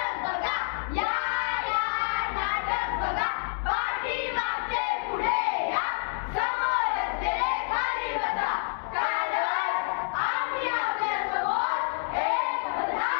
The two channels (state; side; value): silent; right; 59 dB below the other